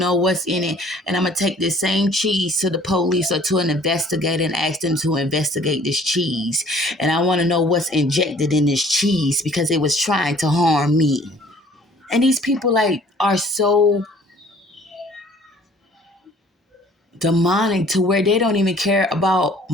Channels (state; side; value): normal; both; correlation 0.54